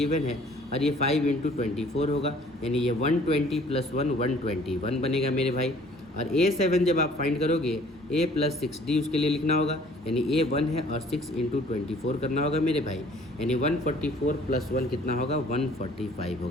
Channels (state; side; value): normal; both; correlation 0.55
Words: है और ये 5 × 24 होगा, यानी ये 120 + 1 121 बनेगा मेरे भाई। और A7 जब आप फाइंड करोगे A+6D उसके लिए लिखना होगा, यानी A1 है और 6 × 24 करना होगा मेरे भाई, यानी 144 + 1 कितना होगा 145